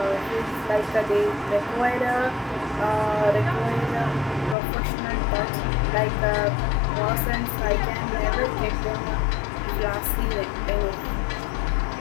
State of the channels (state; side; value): drops out; right; at 4.5 s